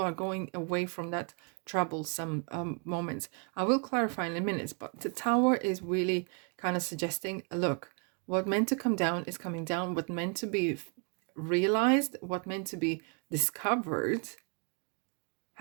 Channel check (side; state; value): left; quieter; 37.5 dB